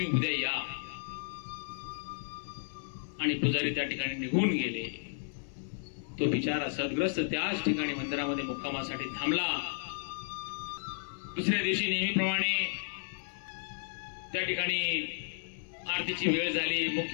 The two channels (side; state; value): right; silent; 56 dB below the other